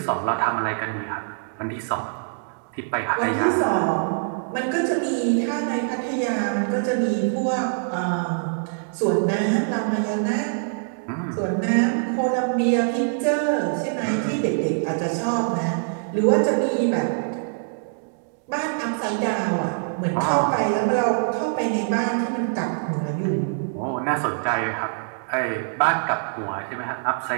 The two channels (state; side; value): silent; left; digital silence